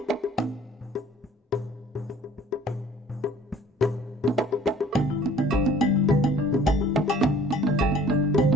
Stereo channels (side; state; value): both; normal; correlation 0.52